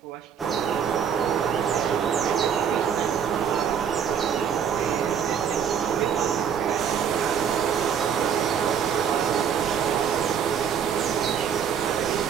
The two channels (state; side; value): quieter; left; 7.8 dB